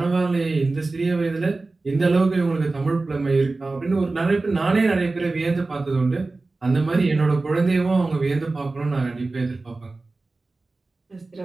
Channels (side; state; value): left; quieter; 3.4 dB